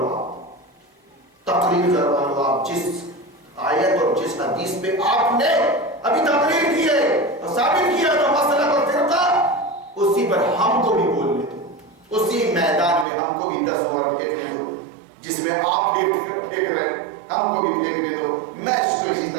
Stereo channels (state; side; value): drops out; left; at 13.1 s